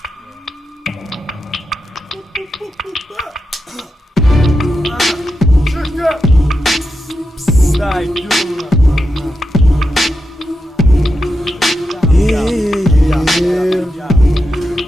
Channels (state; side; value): normal; both; correlation 0.88